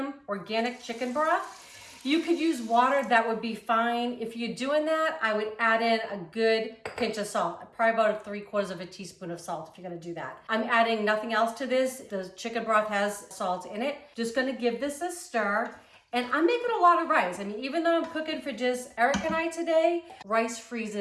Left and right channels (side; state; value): both; identical; correlation 1.00